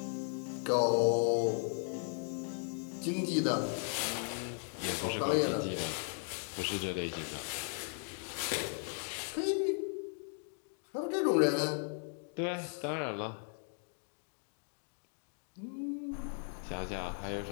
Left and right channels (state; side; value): silent; right; 53 dB below the other